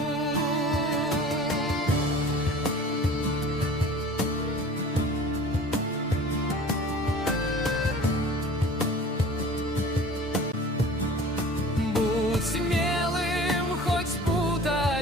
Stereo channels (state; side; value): normal; both; correlation 0.43